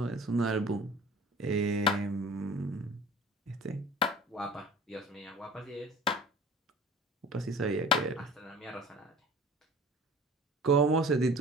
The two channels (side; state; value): both; normal; correlation 0.42